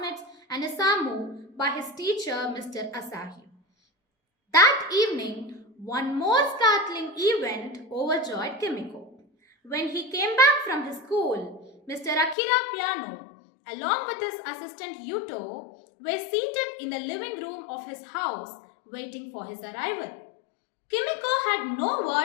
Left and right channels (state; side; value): drops out; right; at 12.4 s